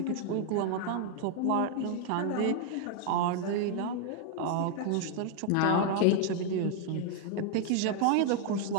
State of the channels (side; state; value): both; different; correlation 0.00